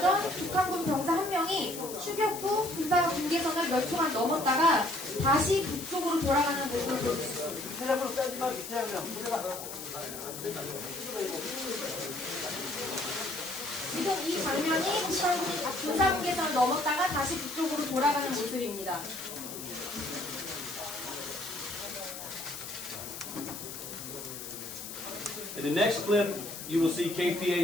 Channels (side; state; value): left; noise; hiss, 9 dB below the sound